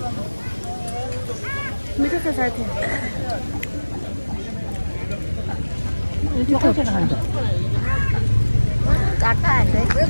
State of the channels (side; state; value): both; inverted; correlation -1.00